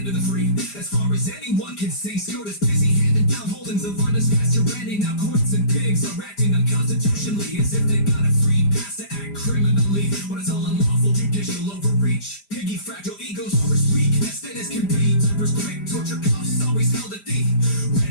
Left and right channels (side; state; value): right; late; 5.0 ms